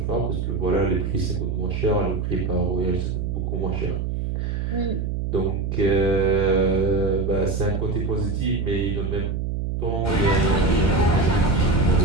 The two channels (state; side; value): noise; right; hum, 2 dB below the sound